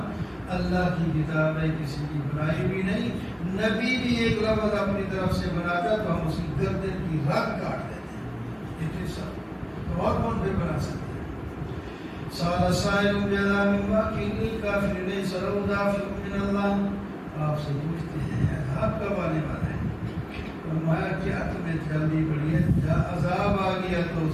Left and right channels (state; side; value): identical; both; correlation 1.00